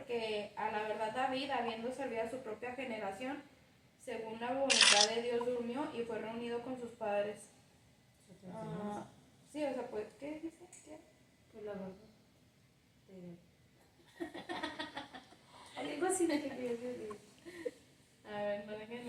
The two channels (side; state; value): both; identical; correlation 1.00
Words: a la verdad David, habiendo servido a su propia generación, según la voluntad de Dios, durmió y fue reunido con sus padres. Sí, o sea, pues, ¿qué dice? ¿Qué? Pues la verdad. Algo así que quería decir. A ver, no